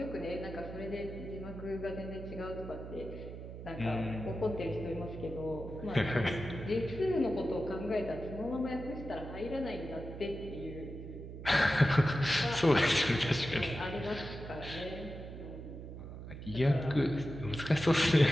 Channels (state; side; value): noise; right; hum, 11 dB below the sound